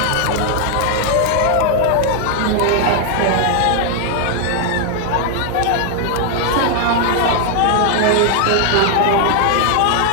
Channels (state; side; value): different; both; correlation 0.00